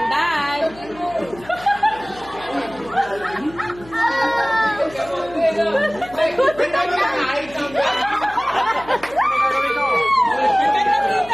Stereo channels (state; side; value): noise; left; hum, 20 dB below the sound